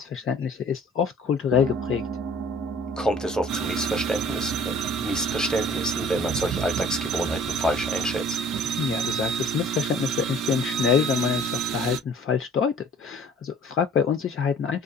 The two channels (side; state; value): both; normal; correlation 0.51